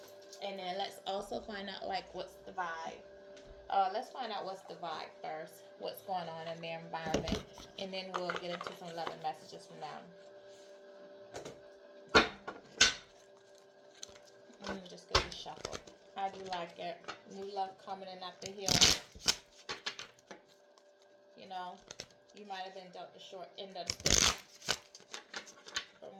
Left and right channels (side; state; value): both; identical; correlation 1.00